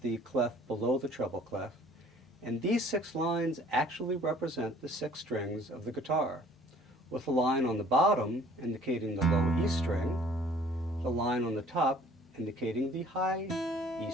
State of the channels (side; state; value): both; normal; correlation 0.54